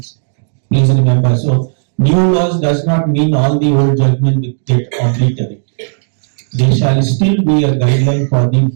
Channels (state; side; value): silent; left; digital silence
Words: Please remember, so new laws does not mean all the old judgment will get obliterated. there shall still be a guideline for the